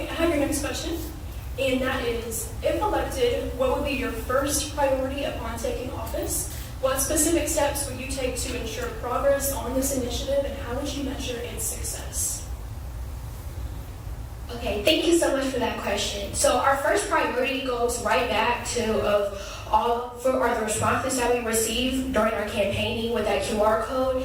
I have your next question, and that is, if elected, what would be your first priority upon taking office? What specific steps would you take to ensure progress on this initiative, and how would you measure its success? Okay, thank you so much for that question. So our first priority goes right back to the responses that we received during our campaigning with that QR code,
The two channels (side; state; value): both; identical; correlation 1.00